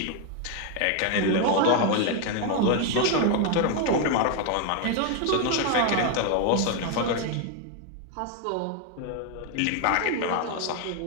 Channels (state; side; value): different; both; correlation 0.01